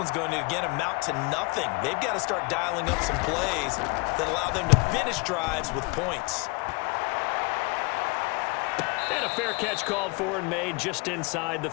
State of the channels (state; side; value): quieter; right; 28.9 dB